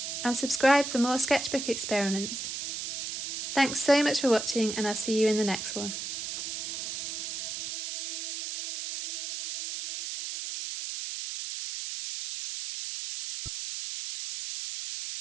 And subscribe for more sketchbook experiments. Thanks so much for watching, and I'll see you in the next one.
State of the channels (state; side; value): noise; right; hiss, 5 dB below the sound